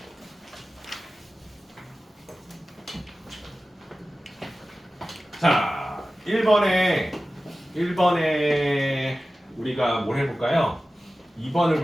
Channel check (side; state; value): both; normal; correlation 0.95